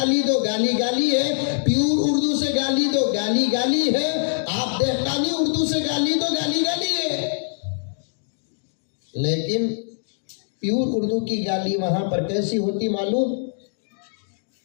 दो गाली गाली है, प्यूर उर्दू से गाली दो गाली गाली है, आप देहकानी उर्दू से गाली दो गाली गाली है। लेकिन प्यूर उर्दू की गाली वहां पर कैसी होती मालूम,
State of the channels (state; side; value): silent; right; digital silence